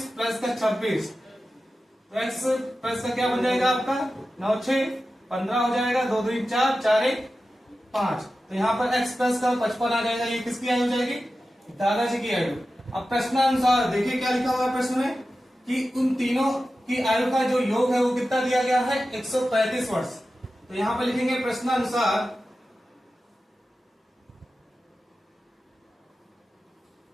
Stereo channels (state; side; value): normal; both; correlation 0.93